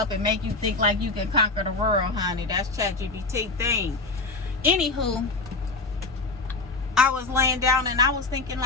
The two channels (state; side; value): quieter; right; 3.5 dB